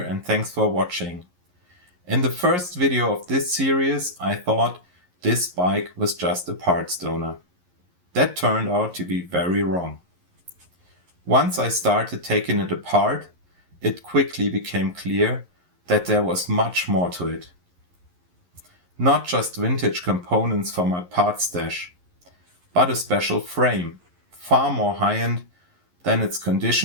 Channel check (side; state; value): left; late; 11 ms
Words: thanks for watching. In the first video of this series I thought this bike was just a parts donor. That turned out to be very wrong. Once I started taking it apart, it quickly became clear that there was much more to it. Not just vintage components for my parts stash, but a special frame, far more high-end than its